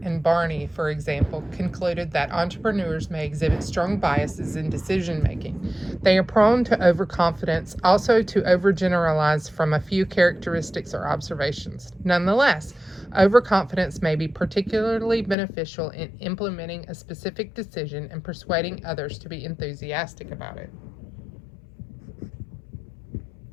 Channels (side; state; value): right; drops out; at 15.4 s